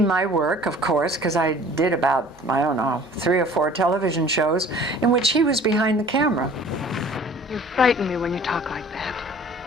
my work, of course, because I did about, I don't know, 3 or 4 television shows in which he was behind the camera. You frighten me when you talk like that.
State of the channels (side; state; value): left; noise; hum, 28 dB below the sound